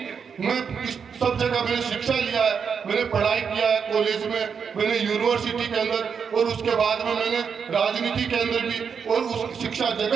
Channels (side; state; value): left; quieter; 6.5 dB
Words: मैं इस सब जगह मैंने शिक्षा लिया है, मैंने पढ़ाई किया है, कॉलेज में, मैंने यूनिवर्सिटी के अंदर, और उसके बाद में मैंने राजनीति के अंदर भी, और उस शिक्षा